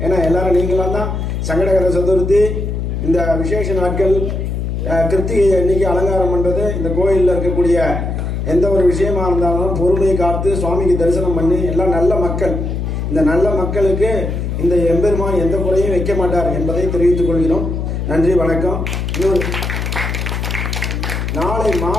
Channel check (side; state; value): left; noise; hum, 2 dB below the sound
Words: ஏன்னா எல்லாரும் நீங்களாம் தான் சங்கடகர சதுர்த்தி, இந்த விசேஷ நாட்கள், கிருத்திகை அன்னைக்கு அலங்காரம் பண்ணுறது, இந்த கோயிலில் இருக்கக்கூடிய எந்த ஒரு விஷயமா இருந்தாலும் பொறுமையை காத்து சுவாமிக்கு தரிசனம் பண்ணி எல்லாம் நல்ல மக்கள். இந்த நல்ல மக்களுக்கு இந்த எம்பெருமான் எந்த குறையும் வைக்க மாட்டார் என்பதை தெரிவித்துக் கொள்கிறோம். நன்றி, வணக்கம். நாளை